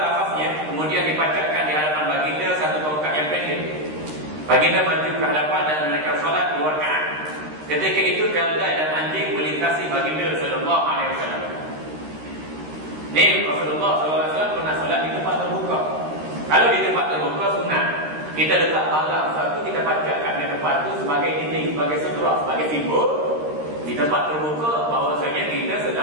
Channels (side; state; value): left; late; 13 ms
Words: kemudian dipacatkan di hadapan baginda satu tongkat yang pendek. Baginda maju ke hadapan dan menaikkan solat 2 rakaat. Ketika itu keldai dan anjing melintasi baginda sallallahu alaihi wasallam. Ni Rasulullah SAW pernah solat di tempat terbuka. Kalau di tempat terbuka sunat, kita letak barang satu, kita pacatkan di tempat itu sebagai dinding, sebagai sutra, sebagai simbol di tempat terbuka bahawasanya kita